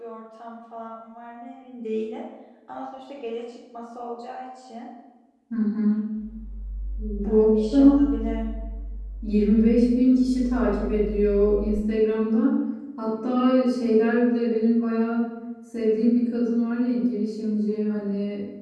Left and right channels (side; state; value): both; identical; correlation 1.00